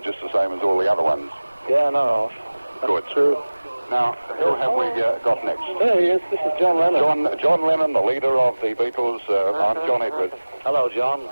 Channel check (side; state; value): both; inverted; correlation -1.00